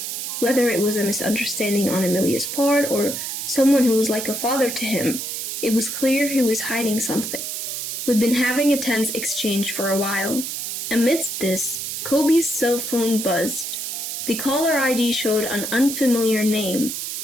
Whether it was a misunderstanding on Emilia's part or someone who was like a father to him, it was clear he was hiding something. We'd been having a tense exchange for a while. Amidst this, Kobe's cell phone buzzed. The caller ID showed an unfamiliar name,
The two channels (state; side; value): noise; right; hiss, 4 dB below the sound